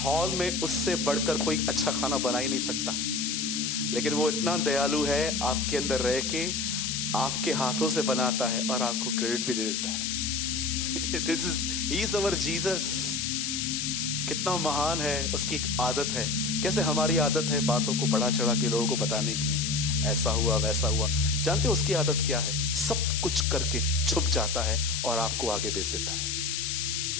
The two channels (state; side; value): noise; left; hiss, 1 dB below the sound